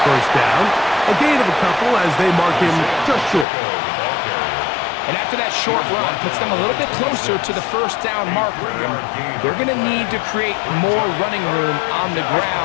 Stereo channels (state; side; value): drops out; right; at 3.5 s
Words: first down. A gain of a couple as they mark him just short. And after that short run, puts them a little bit closer to the first down marker. And they're going to need to create more running room on the